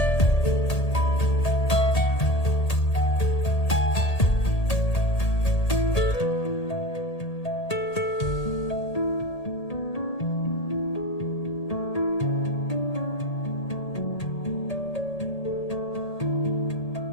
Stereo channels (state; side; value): late; right; 1.8 ms